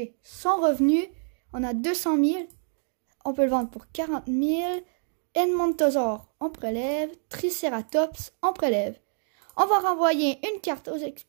sont revenus. On a 200 000. On peut le vendre pour 40 000. Edmontosaure, on prélève. Triceratops, on prélève. On va renvoyer une carte aux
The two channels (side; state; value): left; silent; digital silence